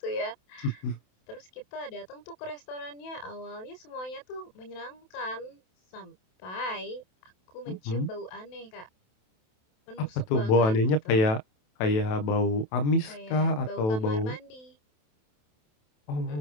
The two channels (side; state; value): right; late; 27 ms